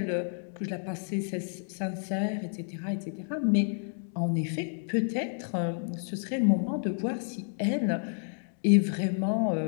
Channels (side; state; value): right; silent; 57 dB below the other